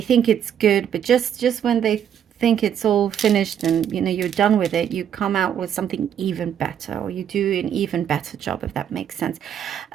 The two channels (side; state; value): left; quieter; 9.2 dB